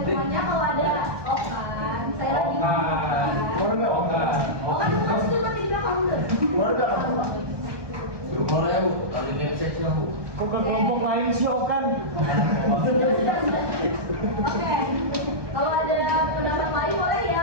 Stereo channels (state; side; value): late; left; 1.2 ms